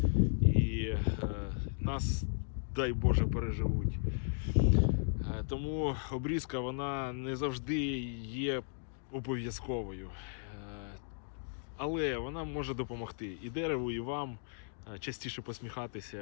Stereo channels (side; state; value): right; silent; digital silence